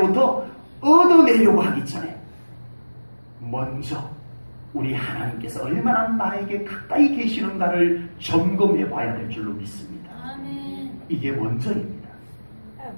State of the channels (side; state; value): both; inverted; correlation -1.00